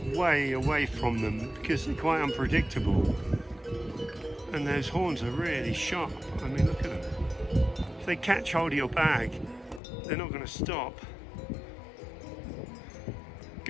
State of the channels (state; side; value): drops out; right; at 9.8 s